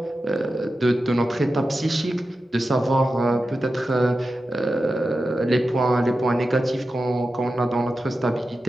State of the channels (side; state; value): both; normal; correlation 0.92